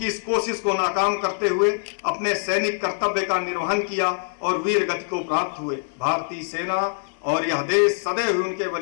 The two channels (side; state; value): right; silent; digital silence